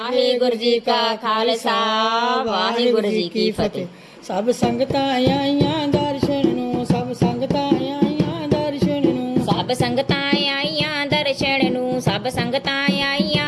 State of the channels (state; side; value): identical; both; correlation 1.00